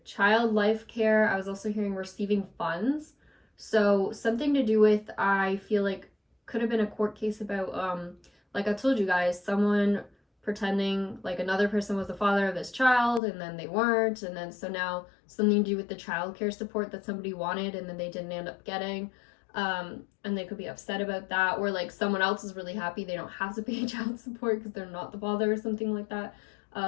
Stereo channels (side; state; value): right; drops out; at 13.2 s